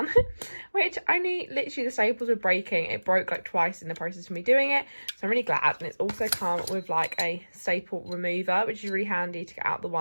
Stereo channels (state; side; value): inverted; both; correlation -1.00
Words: which only literally the staples were breaking. It broke like twice in the process of me doing it, so I'm really glad. And it's also come with like a staple remover, which is really handy to get out the